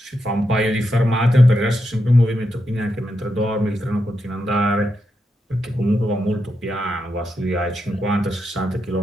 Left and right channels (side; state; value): both; normal; correlation 0.85